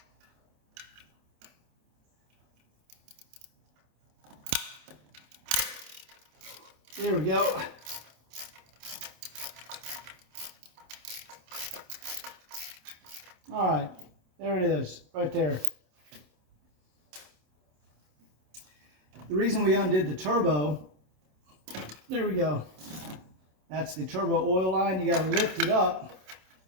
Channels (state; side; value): late; left; 27 ms